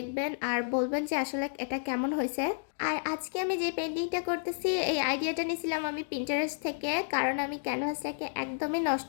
আর বলবেন যে আসলে এটা কেমন হয়েছে। আর আজকে আমি যে পেন্টিংটা করতেছি এই আইডিয়াটা নিয়েছিলাম আমি পিন্টারেস্ট থেকে, কারণ আমি ক্যানভাসটাকে একদমই নষ্ট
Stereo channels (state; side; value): silent; right; digital silence